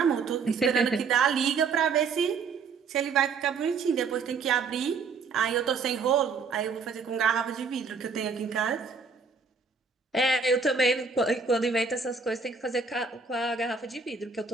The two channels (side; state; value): left; quieter; 5.0 dB